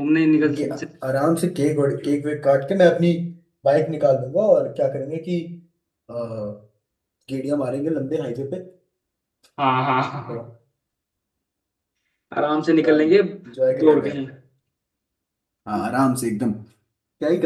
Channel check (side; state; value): both; identical; correlation 1.00